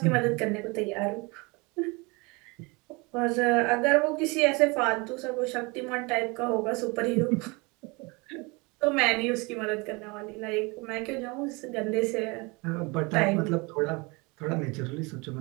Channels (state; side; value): quieter; left; 27.1 dB